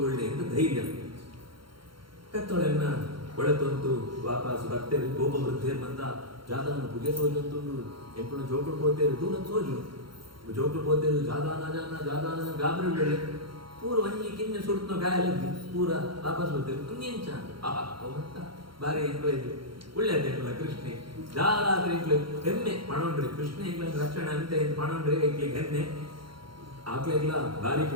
ಎಂದು ಧೈರ್ಯ ಕತ್ತೊಳೆನ್ನ ಒಳತೊಂದು ವಾಪಸ್ ಬರ್ತೇವೆ ಗೋಪ ವೃದ್ಧೇರ್ ಬಂದ ಜಾದಾನ ಪುಗೆ ಸೋಜಂತು ಎಂಪುನ ಜೋಕುಳು ಪೋತೇರು ದೂರ ಸೋಜು ಜೋಕುಳು ಪೋತೇರು ಜಾದಾನ ಗಾಬರಿ ಬೆಳೆ ಪೂರ ಒಂಜಿ ಕಿನ್ನೆ ಸುಡ್ತೋ ಗಾಯಲದ್ದಿ ಪೂರ ವಾಪಸ್ ಬರ್ತೇವೆ ಕುಂಜೆಂಚ ಅವಂತ ಬಾರಿ ಎಂಕ್ಲೆ ಒಳ್ಳೆಯದೇ ಎಂಕ್ಲ ಕೃಷ್ಣೆ ಜಾಲಾದ್ರೆ ಎಂಕ್ಲೆ ಹೆಮ್ಮೆ ಪಣೊಂಡ್ರಿ ಕೃಷ್ಣ ಎಂಕ್ಲ ರಕ್ಷಣೆ ಅಂತ ಪಣೊಂಡ್ರಿ ಎಂಕ್ಲಿಗೆ ಹೆಮ್ಮೆ ಆಕ್ಲೆಗ್ಲ ಭಾರಿ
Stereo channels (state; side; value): late; left; 0.73 ms